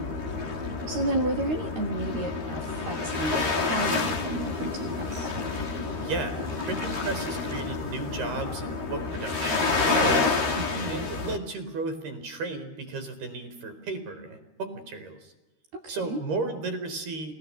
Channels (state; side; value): late; left; 13 ms